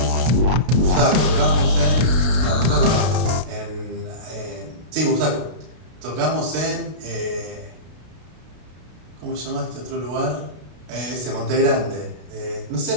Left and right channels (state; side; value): late; left; 32 ms